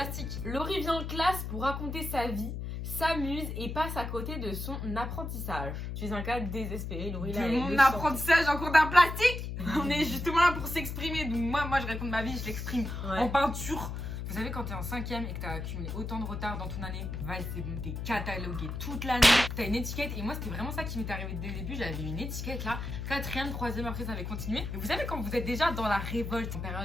Laurie vient en classe pour raconter sa vie, s'amuse et passe à côté de son apprentissage. Tu es un cas désespéré, Laurie. De là, elle mon le sent. apprentissage en cours d'art plastique. On est justement là pour s'exprimer. Donc moi je raconte ma vie, je l'exprime Ouais. en peinture. Vous savez, quand t'es en 5ème et que t'as accumulé autant de retard dans ton année, c'est bon, t'es catalogué toute l'année. T'as une étiquette et moi c'était vraiment ça qui m'est arrivé dès le début. J'avais une étiquette là, 4ème, 3ème, après ça avait continué. Et vous savez, quand vous êtes déjà dans la révolte en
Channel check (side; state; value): left; noise; hum, 5 dB below the sound